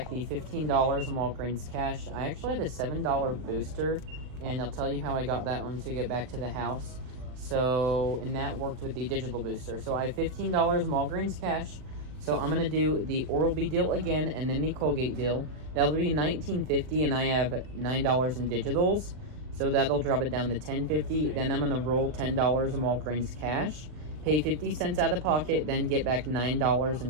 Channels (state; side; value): late; left; 39 ms